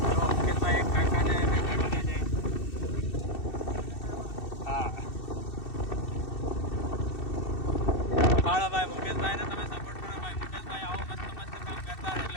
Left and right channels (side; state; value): right; late; 2.7 ms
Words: મુકેશભાઈ એક કાકાને હા ભાળો ભાઈ મુકેશભાઈને તમે સપોર્ટ કરો ભાઈ. મુકેશભાઈ આવો મસ્ત કામ કરતા